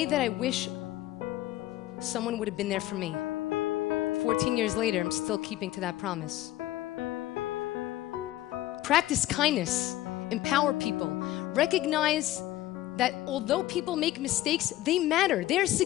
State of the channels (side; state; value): right; quieter; 15.2 dB